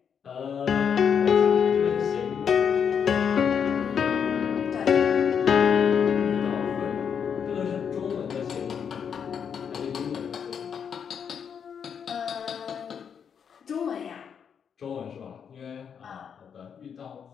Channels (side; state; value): right; quieter; 7.4 dB